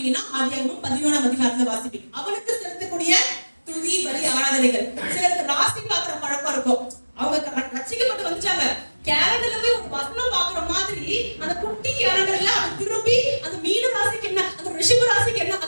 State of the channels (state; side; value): inverted; both; correlation -1.00